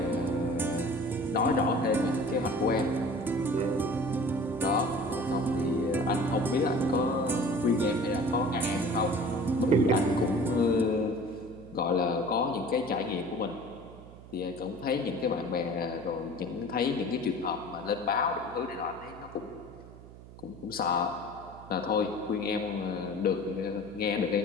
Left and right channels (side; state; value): right; noise; hum, 18 dB below the sound